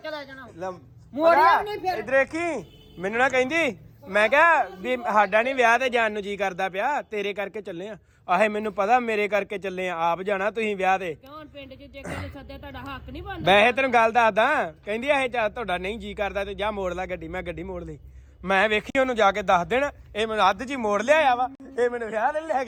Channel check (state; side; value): identical; both; correlation 1.00